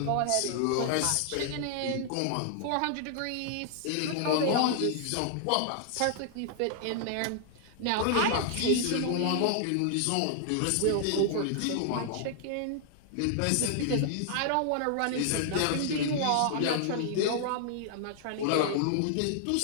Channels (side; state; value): both; different; correlation -0.01